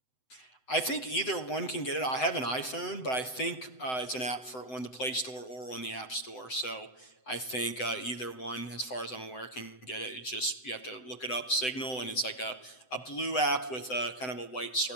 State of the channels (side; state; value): right; late; 7.9 ms